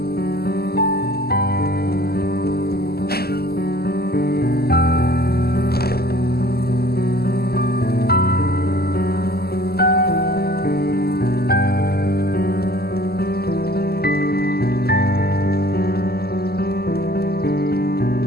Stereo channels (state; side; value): late; right; 0.46 ms